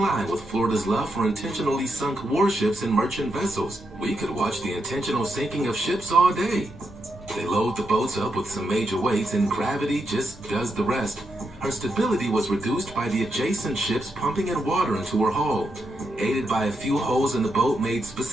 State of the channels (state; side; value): noise; right; rumble, 23 dB below the sound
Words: line with Florida's love for intentionally sunk warships and merchant vessels. We could watch the intentional sinking of ships all day. They load the boats up with some major weights and gravity just does the rest. Her stability was reduced by the adjacent ships pumping in water into her hull. Aided by a few holes in the boat made